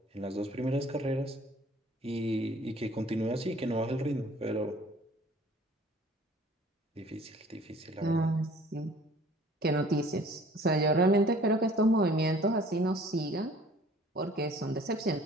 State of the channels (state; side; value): normal; both; correlation 0.52